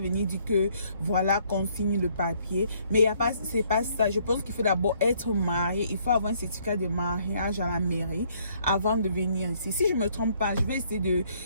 dire que voilà qu'on signe le papier. Mais c'est pas ça. Je pense qu'il faut d'abord être marié. Il faut avoir un certificat de mariage à la mairie avant de venir ici. Si je me trompe pas, je vais essayer de...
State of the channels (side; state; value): both; inverted; correlation -0.66